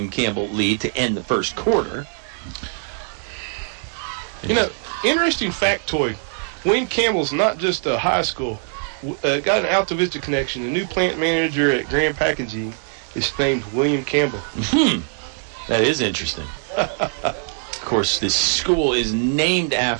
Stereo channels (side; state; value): left; silent; 64 dB below the other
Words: Campbell lead to end the first quarter. You know, interesting factoid. William Campbell's not just a high school. Got an Altavista connection. The new plant manager at Grand Packaging is named William Campbell. That is interesting. Of course, this school is named